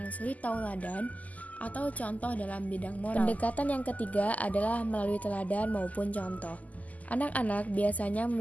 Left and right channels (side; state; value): right; late; 0.076 ms